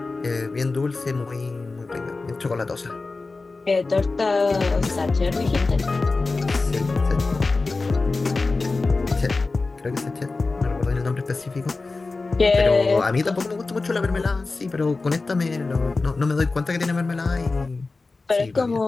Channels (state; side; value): quieter; right; 3.7 dB